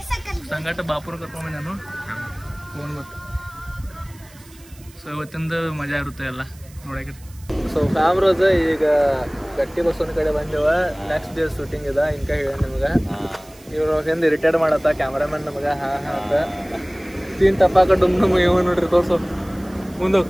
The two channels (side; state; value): right; noise; hiss, 24 dB below the sound